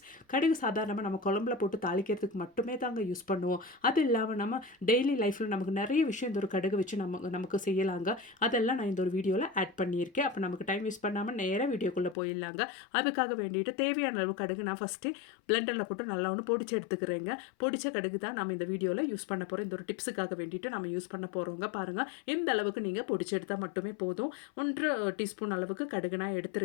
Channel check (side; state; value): right; drops out; at 12.2 s